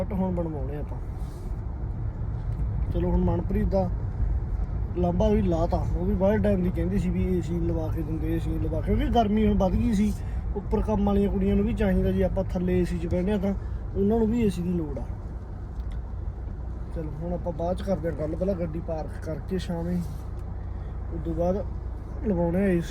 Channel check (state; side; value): identical; both; correlation 1.00